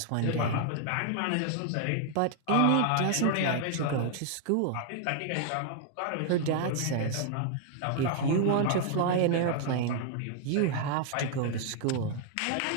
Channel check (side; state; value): both; different; correlation 0.00